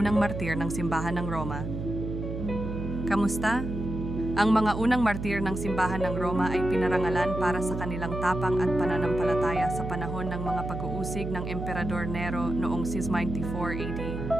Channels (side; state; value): right; noise; hum, 6 dB below the sound